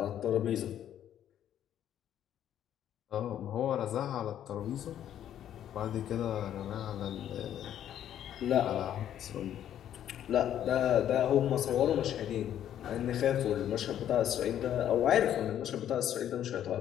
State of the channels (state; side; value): quieter; right; 10.7 dB